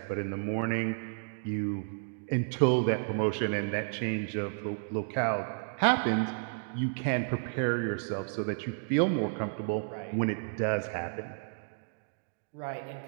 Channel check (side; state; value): left; silent; digital silence